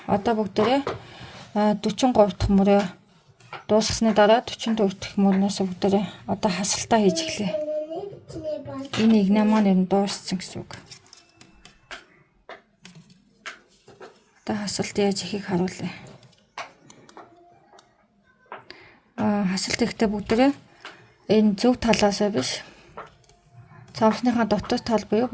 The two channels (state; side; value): identical; both; correlation 1.00